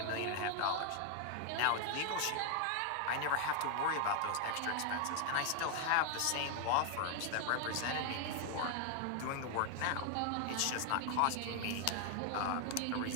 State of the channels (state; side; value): different; both; correlation 0.00